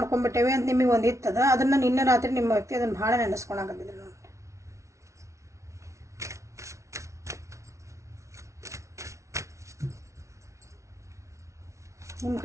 ಅಂತ ನಿಮಗೆ ಒಂದು ಇತ್ತದ. ಅದನ್ನು ನಿನ್ನೆ ರಾತ್ರಿ ನಿಮ್ಮ ವ್ಯಕ್ತಿ ಅದನ್ನು ಭಾಳ ನೆನೆಸ್ಕೊಳಕತ್ತಿದ್ರಿ ನೋಡಿ. ನಿಮ್ಮ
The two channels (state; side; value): late; left; 0.14 ms